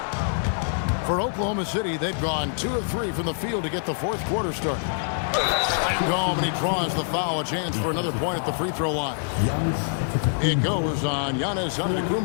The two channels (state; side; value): silent; right; digital silence